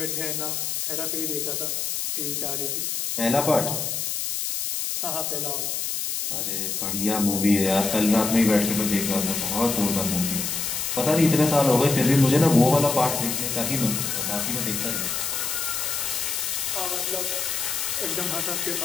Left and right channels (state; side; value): noise; left; hiss, 2 dB below the sound